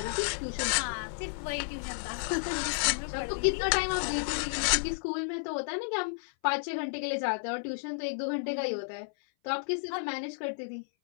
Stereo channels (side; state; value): right; silent; 57 dB below the other